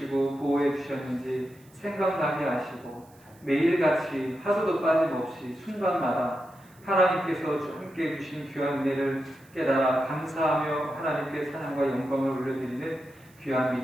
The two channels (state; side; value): noise; right; hiss, 29 dB below the sound